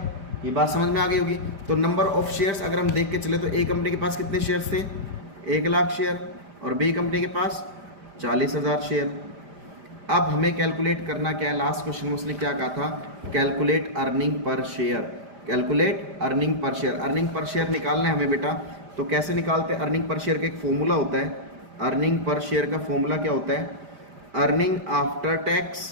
ये बात समझ में आ गई होगी। तो नंबर ऑफ शेयर्स अगर हम देख के चले तो ए कंपनी के पास कितने शेयर्स थे, 1 लाख शेयर, और बी कंपनी के पास 40,000 शेयर। अब हमें कैलकुलेट करना क्या है, लास्ट क्वेश्चन में उसने क्या कहा था, calculate earning per share, calculate earning per share. Earning per share निकालना है हमें बेटा, तो कैसे निकालते हैं, अर्निंग पर शेयर का एक फॉर्मूला होता है। अर्निंग पर शेयर का फॉर्मूला क्या होता है, अर्निंग आफ्टर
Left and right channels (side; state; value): left; late; 5.0 ms